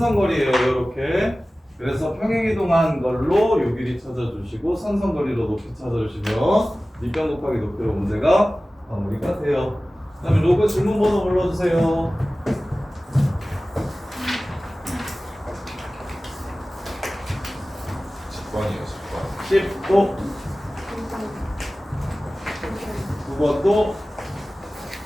요렇게. 그래서 평행이동한 걸로 요 길이 찾아주시고 선선거리로 높이 찾아주시면 밑변 곱하기 높이로 문제가 마무리가 돼요. 그 다음에 로그 질문 번호 불러주세요. 10번이에요 10번 10도 9번도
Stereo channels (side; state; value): both; normal; correlation 0.97